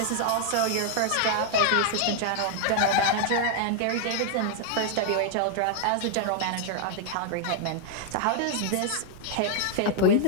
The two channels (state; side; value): different; both; correlation 0.00